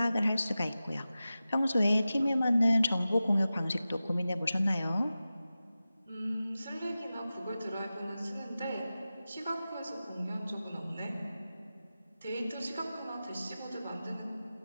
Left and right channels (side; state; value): both; inverted; correlation -0.94